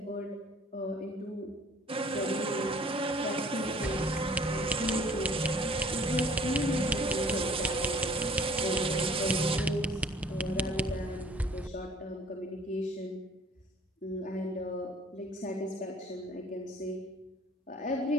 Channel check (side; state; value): both; normal; correlation 0.54